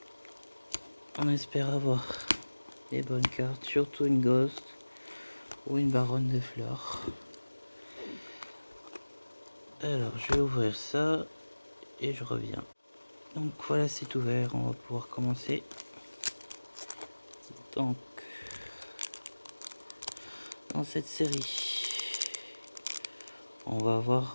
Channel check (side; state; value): both; inverted; correlation -1.00